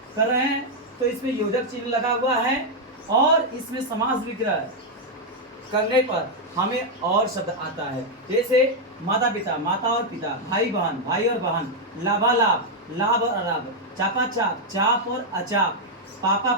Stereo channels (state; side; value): normal; both; correlation -0.01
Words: कर रहे हैं तो इसमें योजक चिन्ह लगा हुआ है और इसमें समास विग्रह करने पर हमें और शब्द आता है। जैसे माता पिता, माता और पिता, भाई बहन, भाई और बहन, लाभालाभ, लाभ और अलाभ, चापा चाप, चाप और अचाप, पापा